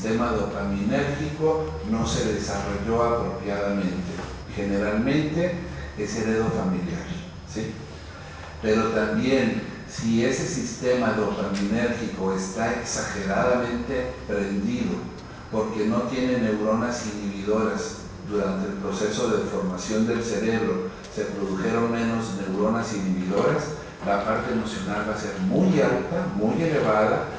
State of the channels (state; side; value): identical; both; correlation 1.00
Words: dopaminérgico no se desarrolló apropiadamente. Generalmente es heredofamiliar, ¿sí? Pero también, si ese sistema dopaminérgico está exageradamente prendido porque no tiene neuronas inhibidoras, durante el proceso de formación del cerebro se produjeron menos neuronas inhibidoras, la parte emocional va a ser muy alta, muy elevada,